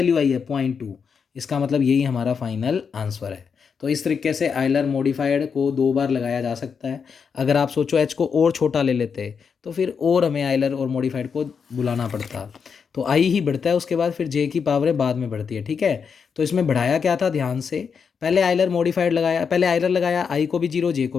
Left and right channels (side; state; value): right; quieter; 6.2 dB